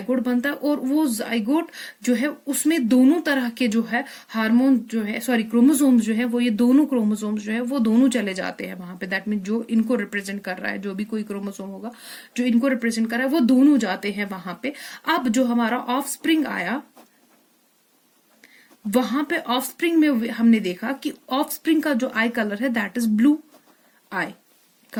बनता है, और वो जाइगोट जो है उसमें दोनों तरह के जो है हार्मोन जो है क्रोमोसोम्स जो है वो, ये दोनों क्रोमोसोम्स जो है वो दोनों चले जाते हैं वहां पे. दैट मीन जो इनको रिप्रेजेंट कर रहा है, जो भी कोई क्रोमोसोम होगा जो इनको रिप्रेजेंट कर रहा है, वो दोनों जाते हैं वहां पे. अब जो हमारा ऑफ स्प्रिंग आया, वहां पे ऑफ स्प्रिंग में हमने देखा कि ऑफ स्प्रिंग का जो आई कलर है that is blue eye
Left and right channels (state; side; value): identical; both; correlation 1.00